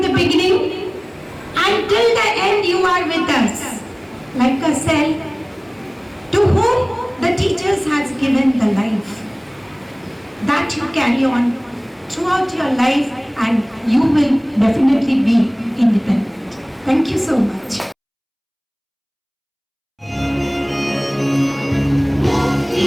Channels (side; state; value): both; identical; correlation 1.00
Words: the beginning. Until the end you are with us, like a cell to whom the teachers has given the life. That you carry on throughout your life, and you will definitely be independent. Thank you so much.